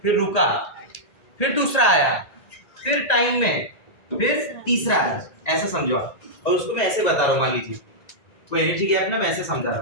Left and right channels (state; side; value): late; right; 1.9 ms